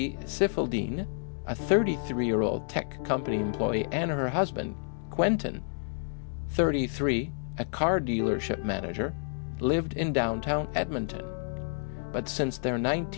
Sifildine, a 33-year-old tech company employee, and her husband, Quentin, 33, a car dealership manager, lived in downtown Edmonton. But since their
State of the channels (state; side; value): silent; right; digital silence